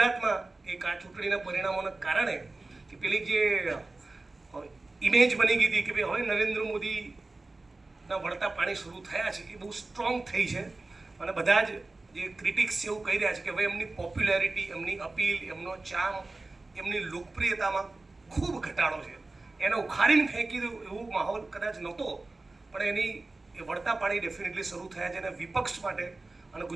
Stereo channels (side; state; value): left; quieter; 3.2 dB